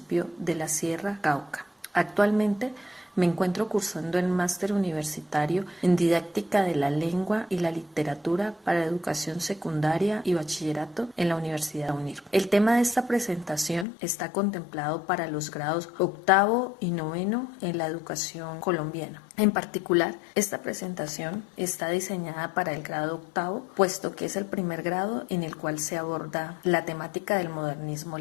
de La Sierra, Cauca. Actualmente me encuentro cursando el máster universitario en didáctica de la lengua y la literatura para educación secundaria y bachillerato en la Universidad UNIR. El tema de esta presentación está contemplado para los grados octavo y noveno en la educación colombiana. En particular, esta presentación está diseñada para el grado octavo, puesto que es el primer grado en el cual se aborda la temática del modernismo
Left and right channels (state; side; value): drops out; right; at 13.9 s